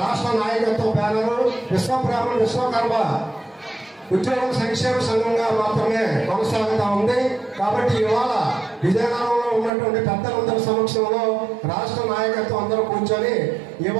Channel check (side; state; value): left; drops out; at 9.7 s